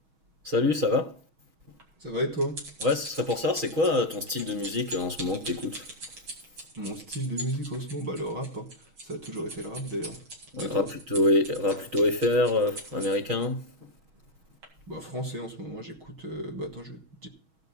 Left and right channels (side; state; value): left; late; 6.3 ms